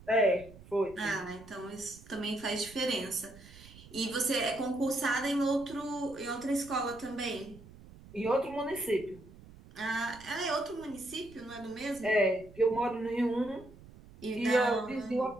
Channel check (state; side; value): noise; right; rumble, 20 dB below the sound